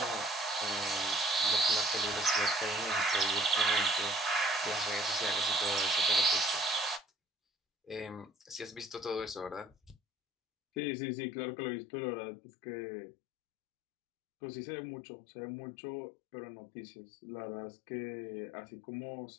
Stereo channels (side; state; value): right; drops out; at 10.8 s